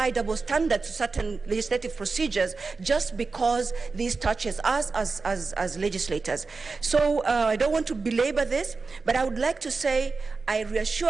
double standards to certain legislative procedures just because this touches us as legislators. So I don't want to belabor this, but I would like to say I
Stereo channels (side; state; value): left; quieter; 4.2 dB